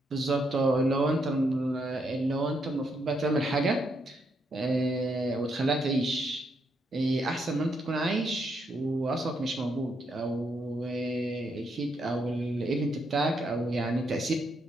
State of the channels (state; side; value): normal; both; correlation 0.77